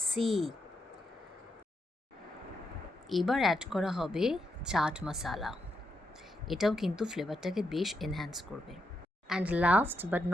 এবার অ্যাড করা হবে চাট মশালা, এটাও কিন্তু ফ্লেভারটাকে বেশ এনহ্যান্স করবে। And last but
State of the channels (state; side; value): normal; both; correlation 0.83